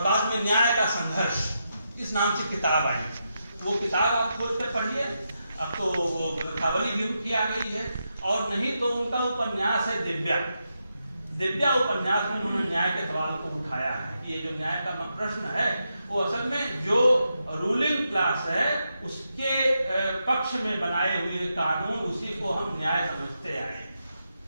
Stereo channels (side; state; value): both; inverted; correlation -0.85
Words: में न्याय का संघर्ष इस नाम से किताब आई। वो किताब आप खोल कर पढ़िए, अब तो वो ग्रंथावली भी उनकी आ गई है। और नहीं तो उनका उपन्यास है दिव्या उपन्यास में उन्होंने न्याय के सवाल को उठाया है कि ये जो न्याय का प्रश्न है वो असल में जो रूलिंग क्लास है उसके पक्ष में बनाए हुए कानून, उसी को हम न्याय समझते आए।